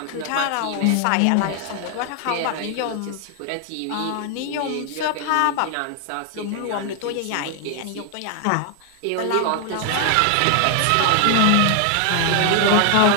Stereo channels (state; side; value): different; both; correlation 0.00